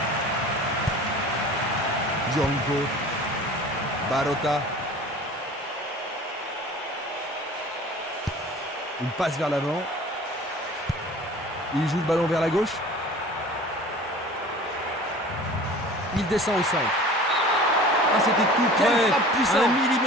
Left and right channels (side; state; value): both; normal; correlation 0.43